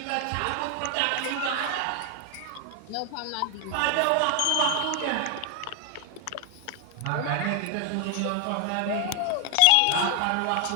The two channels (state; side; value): different; both; correlation 0.00